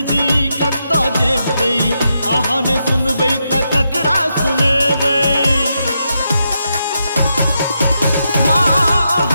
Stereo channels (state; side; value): inverted; both; correlation -0.84